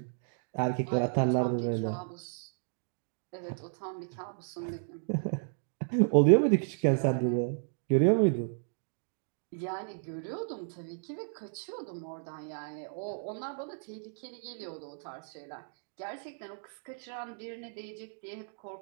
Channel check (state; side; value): silent; left; digital silence